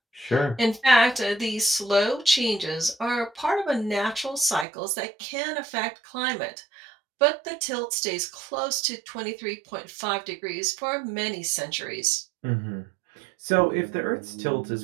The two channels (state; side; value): drops out; left; at 4.7 s